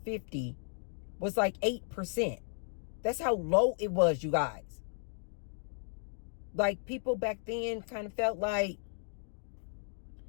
was like 8%. That's how low it was, you guys. Like, people back then kind of felt like,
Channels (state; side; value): silent; right; digital silence